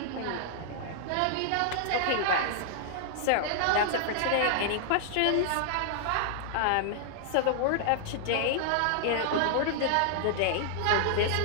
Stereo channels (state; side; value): different; both; correlation -0.01